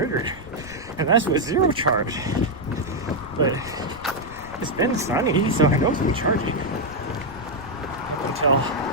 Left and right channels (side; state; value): left; noise; rumble, 18 dB below the sound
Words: and that's with zero charge. But it's been sunny, so I know it's been charging up until